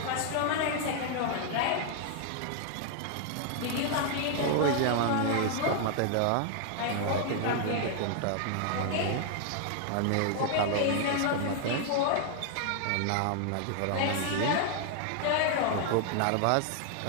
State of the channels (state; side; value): different; both; correlation 0.00